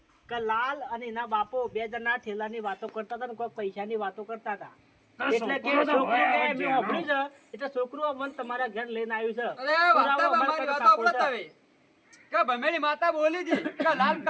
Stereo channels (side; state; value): both; identical; correlation 1.00